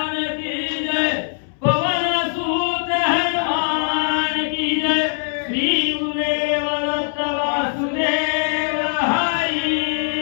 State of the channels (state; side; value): silent; right; 65 dB below the other